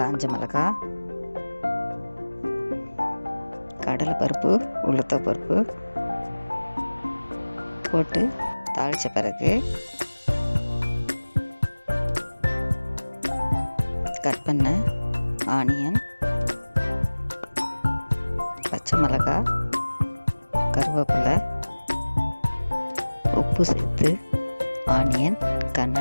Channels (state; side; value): inverted; both; correlation -1.00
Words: மிளகாய், கடலைப்பருப்பு, உளுத்தப்பருப்பு போட்டு தாளித்த பிறகு கட் பண்ண ஆனியன், பச்சை மிளகாய், கருவேப்பிலை, உப்பு சேர்த்து ஆனியன்